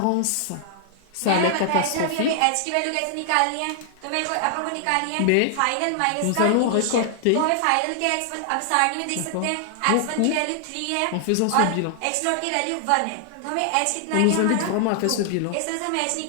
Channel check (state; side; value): different; both; correlation 0.00